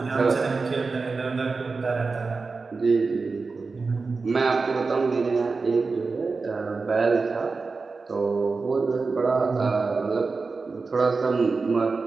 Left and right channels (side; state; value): left; quieter; 4.2 dB